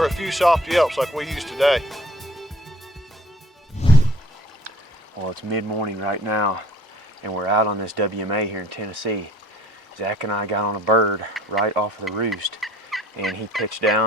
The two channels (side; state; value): both; normal; correlation 0.53